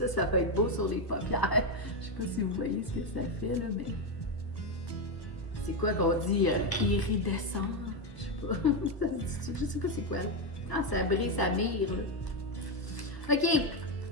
ça peut être beau sur les paupières. Je sais pas si vous voyez ce que ça fait, là, mais... C'est quoi qu'on dit? Iridescent? Je sais pas c'est quoi. Ah, ça brille, ça mire, là. OK!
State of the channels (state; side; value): late; right; 1.0 ms